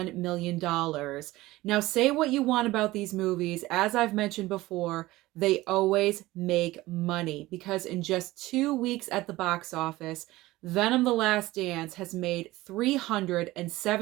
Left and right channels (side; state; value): left; quieter; 18.3 dB